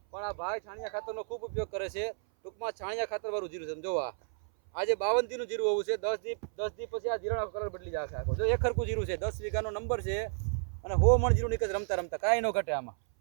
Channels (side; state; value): left; silent; 56 dB below the other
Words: પણ આ ભાઈ છાણિયા ખાતરનો ખૂબ ઉપયોગ કરે છે. ટૂંકમાં છાણિયા ખાતરવાળું જીરું છે. જોવા આજે 52 દીનું જીરું હોવું છે. 10 દી પછી આ જીરાનો કલર બદલી જશે આખો. જો એક હરખું જીરું છે, 10 વીઘાનો નંબર છે અને 100 મણ જીરું નીકળે રમતા રમતા, કાંઈ ન ઘટે આમાં.